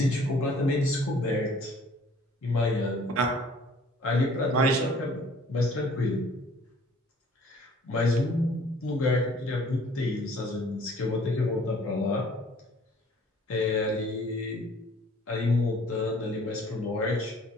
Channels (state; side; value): normal; both; correlation 0.55